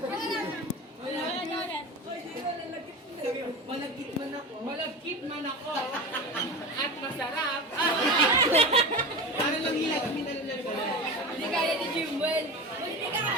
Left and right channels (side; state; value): both; normal; correlation 0.27